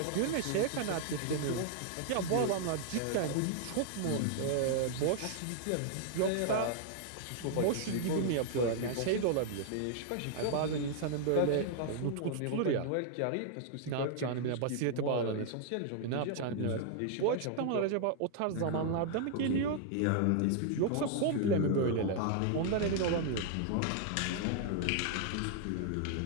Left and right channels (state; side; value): different; both; correlation -0.01